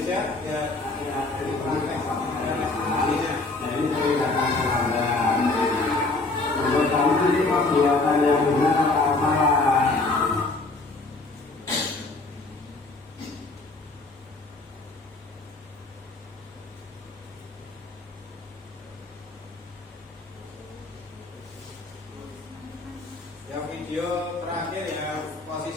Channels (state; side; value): quieter; right; 3.3 dB